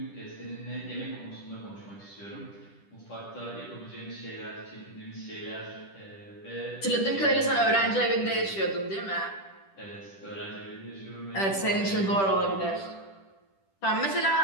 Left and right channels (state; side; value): late; right; 10 ms